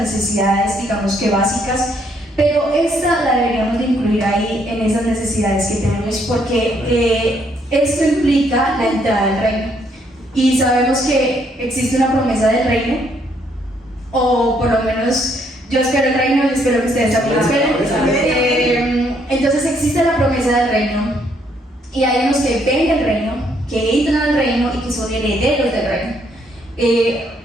digamos que básicas. Pero esta la deberíamos de incluir ahí en esas necesidades que tenemos, porque esto implica la entrada al reino. Y sabemos que existe una promesa del reino, o por lo menos yo espero el reino y espero que ustedes también lo esperen. Entonces existe la promesa del reino, y hay unos que ven el reino, que entran al reino y que son herederos del reino.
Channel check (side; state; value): both; normal; correlation 0.70